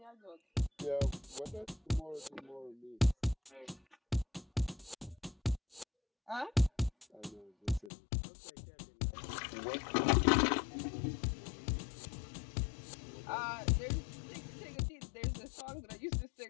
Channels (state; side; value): drops out; right; at 7.9 s